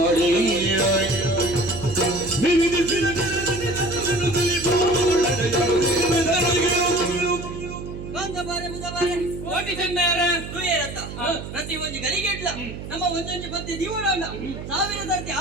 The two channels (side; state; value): right; noise; hum, 10 dB below the sound